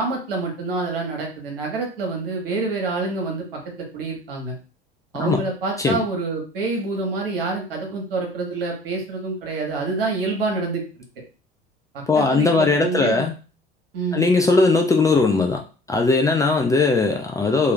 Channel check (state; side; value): normal; both; correlation 0.51